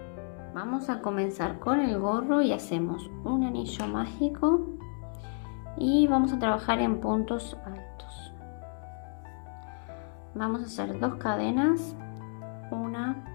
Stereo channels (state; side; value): silent; right; 57 dB below the other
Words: Vamos a comenzar con el gorro y hacemos un anillo mágico y vamos a trabajar en puntos altos. Vamos a hacer 2 cadenas, 1,